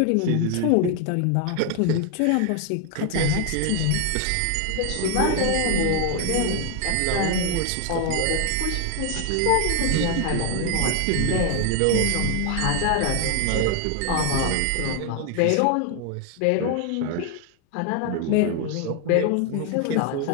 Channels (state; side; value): different; both; correlation 0.01